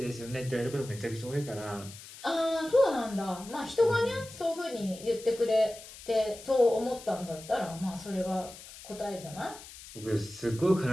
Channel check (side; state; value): left; noise; hiss, 16 dB below the sound